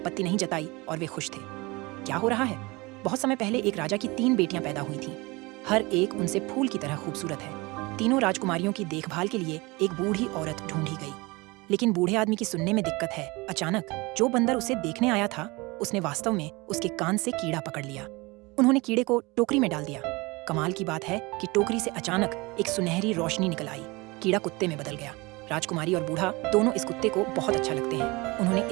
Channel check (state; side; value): quieter; left; 24.1 dB